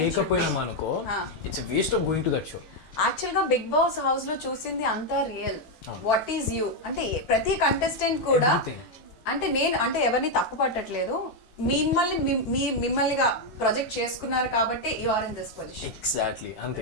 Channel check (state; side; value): late; right; 18 ms